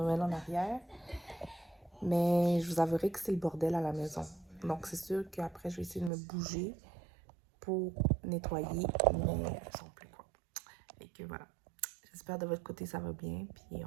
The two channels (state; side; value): drops out; left; at 6.1 s